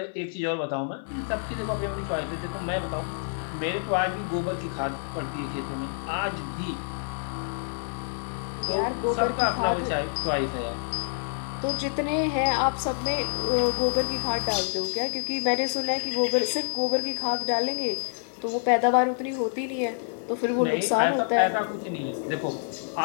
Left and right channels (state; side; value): silent; right; digital silence